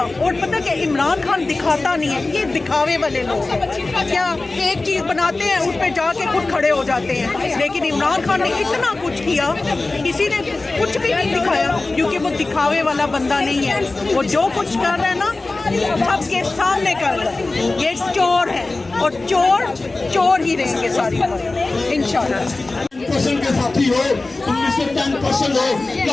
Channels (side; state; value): right; quieter; 3.3 dB